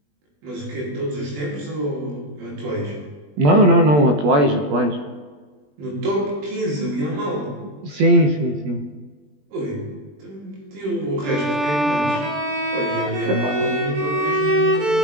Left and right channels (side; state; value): left; late; 20 ms